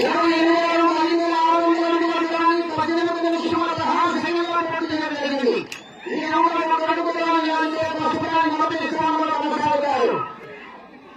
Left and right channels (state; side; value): identical; both; correlation 1.00